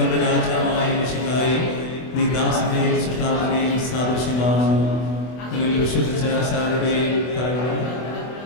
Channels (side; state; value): right; late; 24 ms